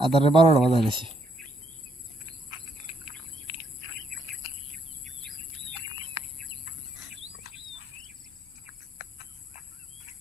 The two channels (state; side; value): normal; both; correlation 0.73